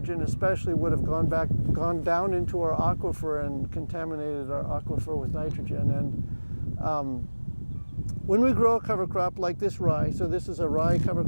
especially would have gone down into our aquifer and contaminated our aquifer with nitrogen. And when we grow a cover crop like this rye, so this is a rye cover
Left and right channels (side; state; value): both; inverted; correlation -1.00